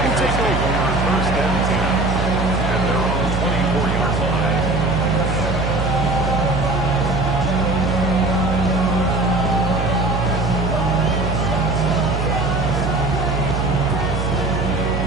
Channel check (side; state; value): right; noise; hum, 2 dB below the sound